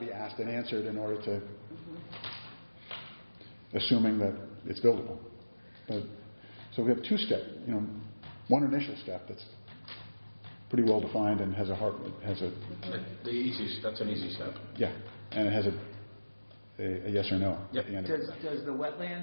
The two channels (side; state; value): both; inverted; correlation -1.00